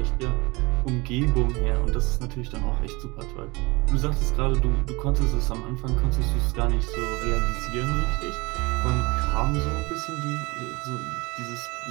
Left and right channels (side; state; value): left; quieter; 24.7 dB